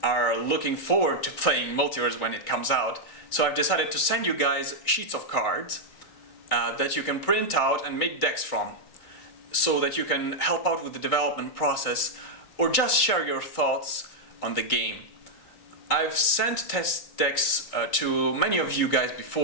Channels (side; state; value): right; late; 3.7 ms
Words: are looking forward to playing Multiverse when it comes out, so I've decided to send you guys sheets of cards that you can print out and make decks from, so that you can help out with the development process or just share your thoughts on the game. I've sent test decks to many of you guys